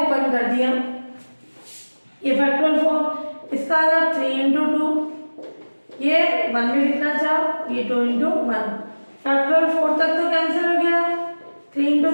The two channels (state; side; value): inverted; both; correlation -1.00